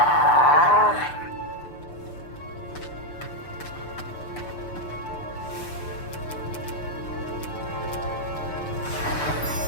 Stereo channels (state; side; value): late; right; 6.8 ms